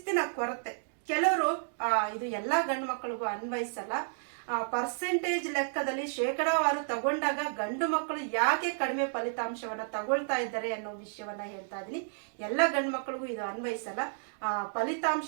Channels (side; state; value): left; silent; digital silence